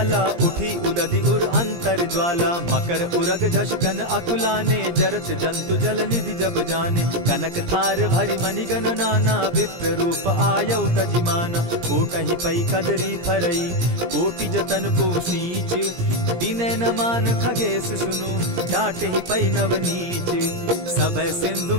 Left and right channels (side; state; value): left; late; 17 ms